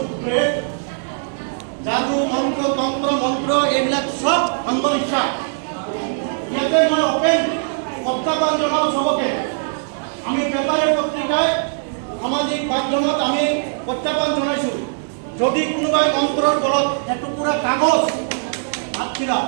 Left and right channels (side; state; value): left; silent; digital silence